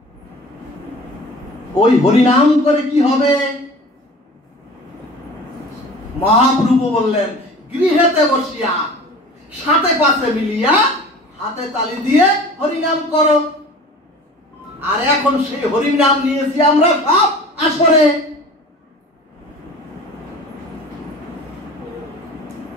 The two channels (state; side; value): normal; both; correlation 0.41